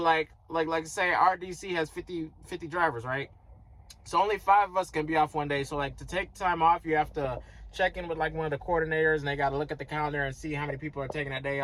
say, our DC has 50 drivers, right? So only 5 of us can be off 1 day. So like to take time off, you have to check in with like one of the coordinators, and they got to look at the calendar and see how many people are taking that day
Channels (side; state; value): both; identical; correlation 1.00